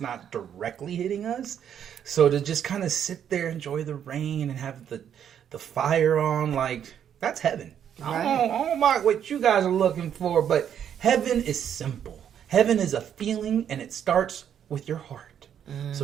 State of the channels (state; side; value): quieter; left; 9.1 dB